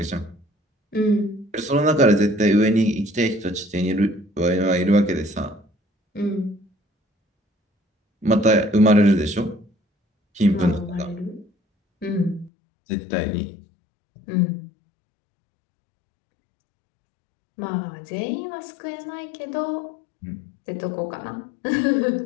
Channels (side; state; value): right; drops out; at 12.5 s